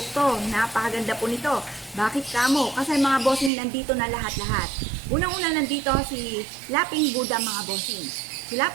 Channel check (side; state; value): left; drops out; at 3.5 s